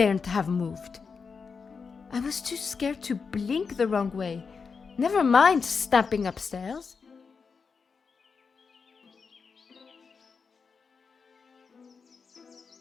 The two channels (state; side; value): quieter; right; 5.3 dB